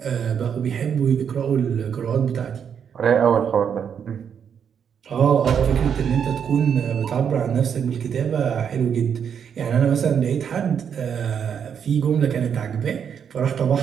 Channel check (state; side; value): quieter; left; 7.7 dB